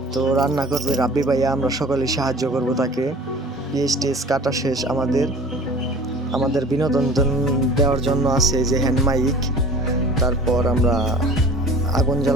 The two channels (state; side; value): normal; both; correlation 0.44